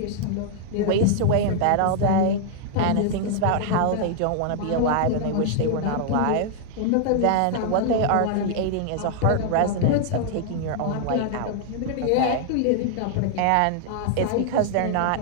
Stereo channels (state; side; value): different; both; correlation -0.01